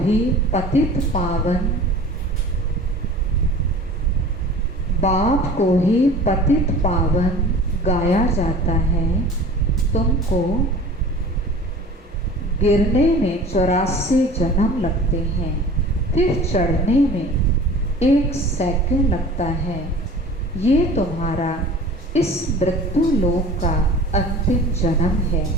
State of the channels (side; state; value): both; normal; correlation 0.42